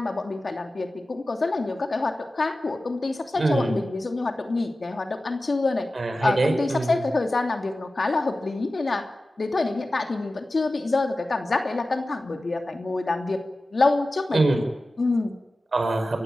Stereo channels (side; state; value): both; normal; correlation 0.95